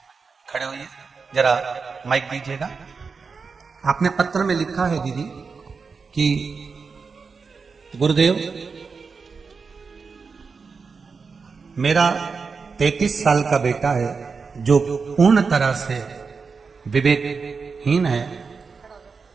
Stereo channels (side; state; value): left; quieter; 5.0 dB